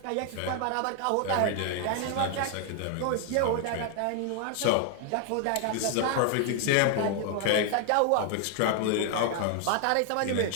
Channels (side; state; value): both; different; correlation 0.00